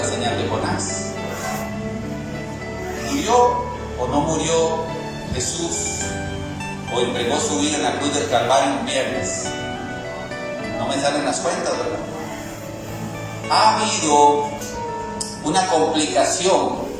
señal de Jonás. ¿Murió o no murió Jesús? ¿O entregó su vida en la cruz del Calvario un viernes? No me salen las cuentas, ¿verdad? Ha habido una complicación,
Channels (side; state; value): both; identical; correlation 1.00